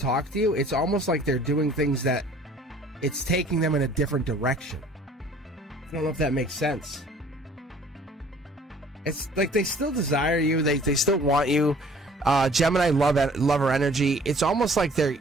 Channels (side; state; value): both; normal; correlation 0.53